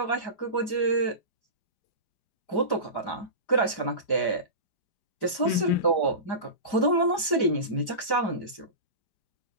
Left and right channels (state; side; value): late; right; 4.9 ms